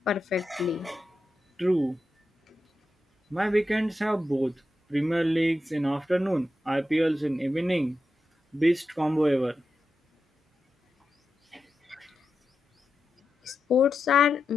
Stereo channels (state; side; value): normal; both; correlation 0.89